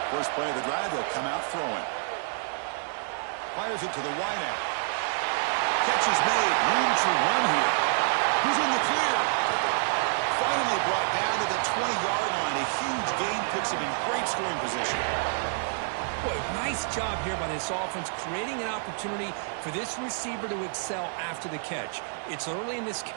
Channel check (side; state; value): left; silent; digital silence